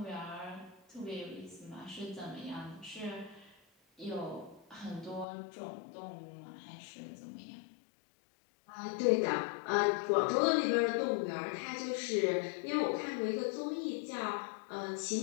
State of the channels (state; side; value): drops out; right; at 5.2 s